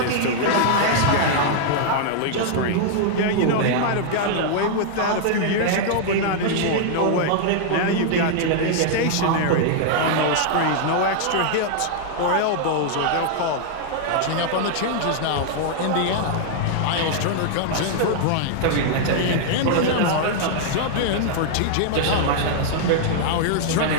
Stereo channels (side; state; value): both; different; correlation -0.01